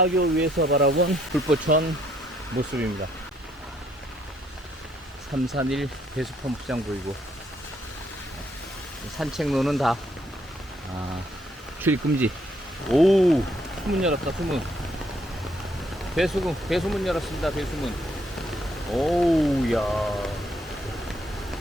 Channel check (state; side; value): normal; both; correlation 0.70